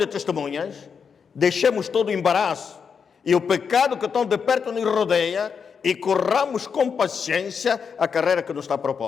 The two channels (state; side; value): quieter; right; 6.3 dB